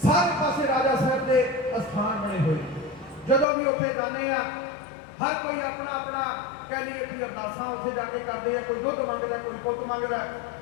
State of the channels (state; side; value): drops out; right; at 3.5 s